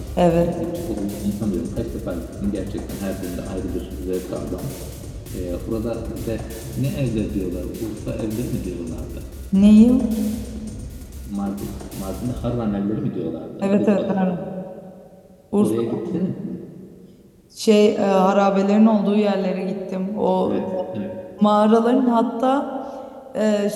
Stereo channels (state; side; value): identical; both; correlation 1.00